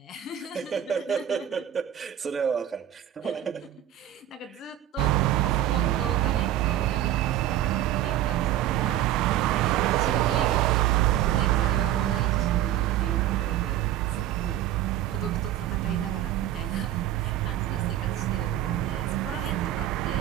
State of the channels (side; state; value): left; quieter; 12.1 dB